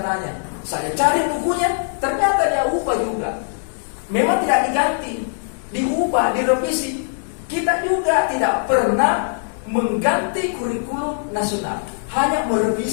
Saya cari bukunya, ternyata dia ubah juga. Memang tidak diganti, diubah, direvisi. Kita juga tidak pernah mengganti kurikulum nasional, hanya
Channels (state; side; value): silent; right; digital silence